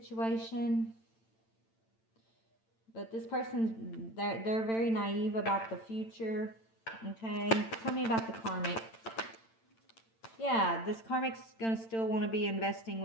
But this person, they're very naive about the future, okay? Tell me about the karmic. Yeah, this karmic's going to still want to be investing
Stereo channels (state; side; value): late; right; 8.9 ms